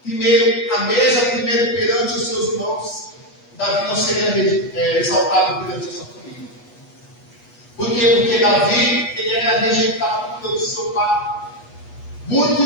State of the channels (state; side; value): late; right; 8.3 ms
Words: primeiro a mesa, primeiro perante os seus irmãos, Davi não seria exaltado perante a sua família. Por quê? Porque Davi, ele era rejeitado pelo seu pai.